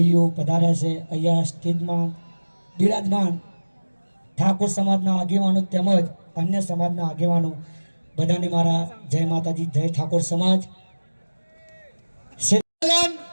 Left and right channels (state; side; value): inverted; both; correlation -1.00